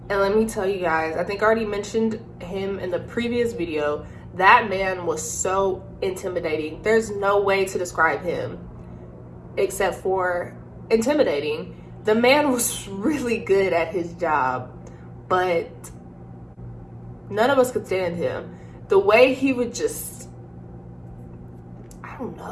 And let me tell you guys, I think I already mentioned him in the previous video. That man was so intimidating. There's no way to describe him except for intimidating. The man was really good at his job, but none of us could stand him. The way he would just, I don't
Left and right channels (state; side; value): identical; both; correlation 1.00